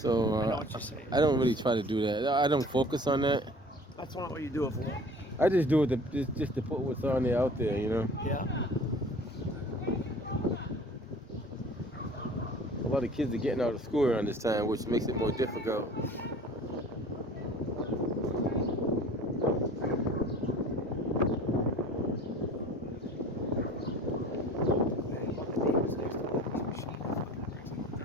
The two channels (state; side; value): normal; both; correlation 0.45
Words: I know what you're saying. I don't really try to do that. I don't focus on that. That's not what you do it for. I just do it just to put what's on there out there, you know. Yeah. A lot of kids are getting out of school around this time, which makes it more difficult.